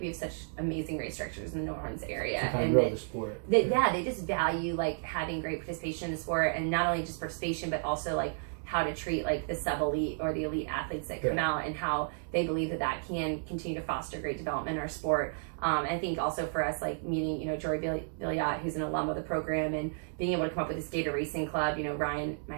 have such amazing race directors in the New Orleans area, and grow the sport. They just value like having great participation in the sport, and not only just participation but also like how to treat like the sub-elite or the elite athletes that come out, and how they believe that can continue to foster great development in our sport. I think also for us, like meeting, you know, Jory Billiot, who's an alum of the program, and being able to come up with this Gator Racing Club, you know, Ryan, my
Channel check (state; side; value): silent; left; digital silence